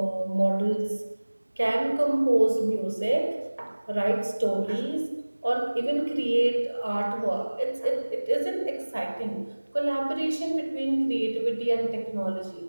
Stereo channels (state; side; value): inverted; both; correlation -1.00